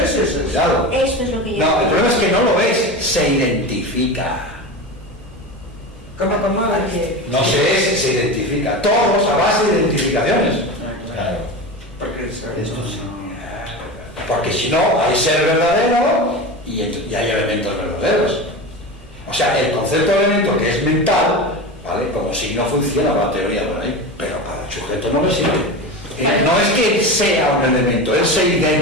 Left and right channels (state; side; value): normal; both; correlation 0.26